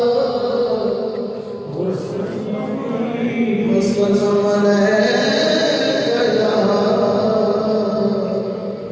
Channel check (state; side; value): identical; both; correlation 1.00